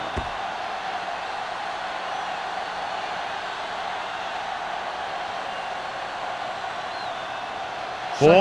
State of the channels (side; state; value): both; identical; correlation 1.00